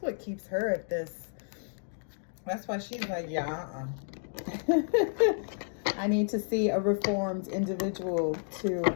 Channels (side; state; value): right; silent; digital silence